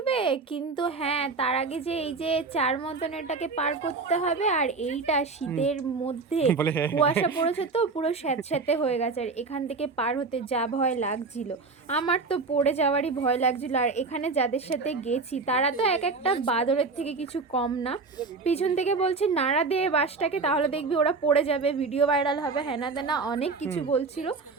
কিন্তু হ্যাঁ তার আগে যে এই যে 4 মতন এটাকে পার করতে হবে, আর এইটা শীতের মধ্যে কুয়াশা পড়েছে তো পুরো স্যাঁতস্যাঁতে হয়ে গেছে, আর এখান থেকে পার হতে যা ভয় লাগছিল, আমার তো পড়ে যাওয়ারই ভয় লাগছিল। আর এখানে যাদের সাথে গেছি তারা তো এক একটা বাদরের থেকে কিছু কম না। পিছন থেকে বলছে নাড়া দে বাসটাকে, তাহলে দেখবি ওরা পড়ে যাবে, ভিডিও ভাইরাল হবে, হ্যানা তেনা অনেক কিছু বলছিল।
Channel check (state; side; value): quieter; left; 4.2 dB